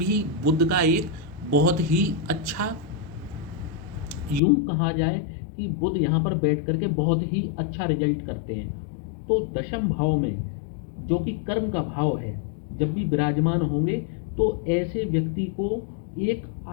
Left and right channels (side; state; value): right; drops out; at 4.4 s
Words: बुध का एक बहुत ही अच्छा, यूं कहा जाए कि बुध यहाँ पर बैठ करके बहुत ही अच्छा रिजल्ट करते हैं। तो दशम भाव में जो कि कर्म का भाव है, जब भी विराजमान होंगे तो ऐसे व्यक्ति को एक